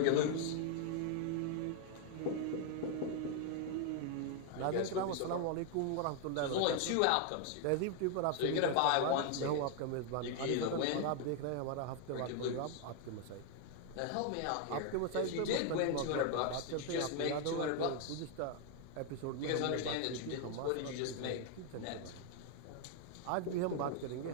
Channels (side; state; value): both; different; correlation 0.00